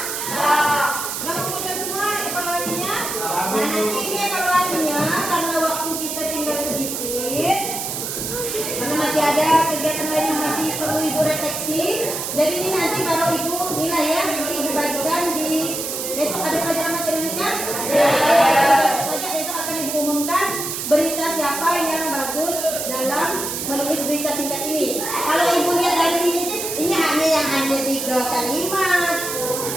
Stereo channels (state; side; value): noise; right; hiss, 4 dB below the sound